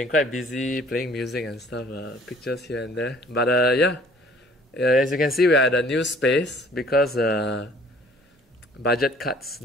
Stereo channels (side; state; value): both; normal; correlation 0.55